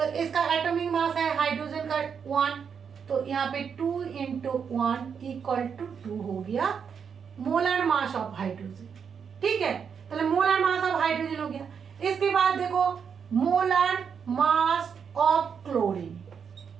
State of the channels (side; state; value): left; quieter; 6.8 dB